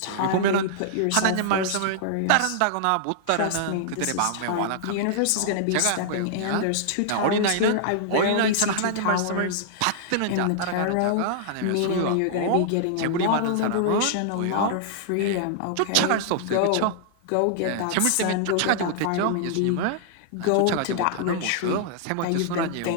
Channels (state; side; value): different; both; correlation -0.01